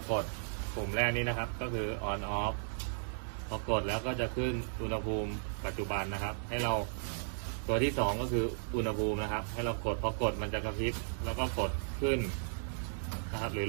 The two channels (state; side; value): silent; left; digital silence